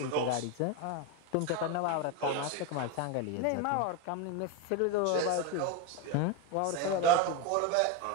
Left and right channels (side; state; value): both; different; correlation 0.03